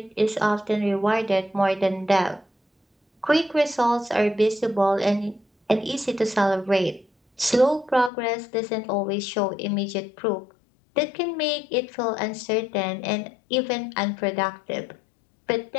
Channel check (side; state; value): right; drops out; at 8.1 s